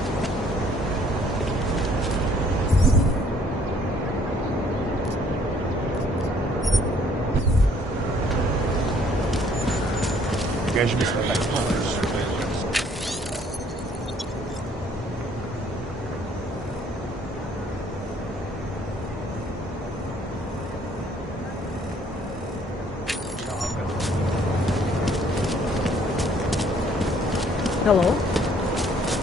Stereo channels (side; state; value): both; normal; correlation 0.61